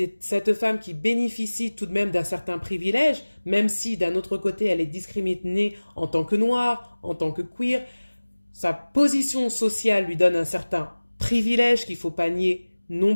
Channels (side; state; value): both; inverted; correlation -1.00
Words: cette femme qui bénéficie tout de même d'un certain privilège, même si d'un autre côté, elle est discriminée en tant que noire, en tant que queer. Sa position sociale lui donne un certain privilège qu'il ne faut pas nier non